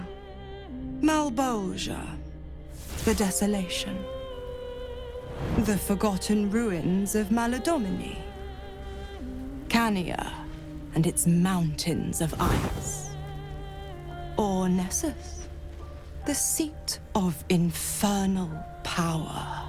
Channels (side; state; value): both; identical; correlation 1.00